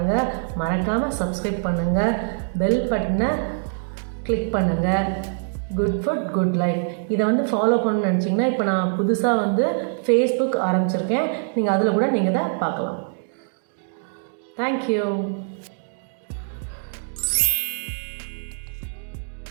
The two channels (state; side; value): silent; left; digital silence